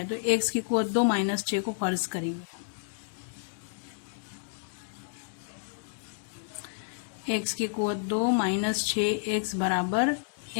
तो x की कुवत 2 -6 को फर्ज करेंगे। x की कुवत 2 -6x बराबर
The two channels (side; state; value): right; silent; 58 dB below the other